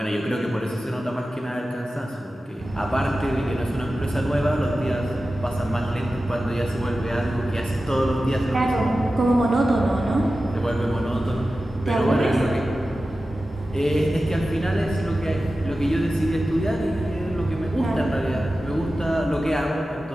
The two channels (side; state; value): both; normal; correlation 0.94